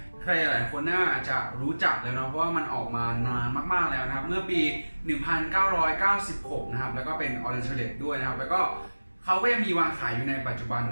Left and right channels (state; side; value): inverted; both; correlation -1.00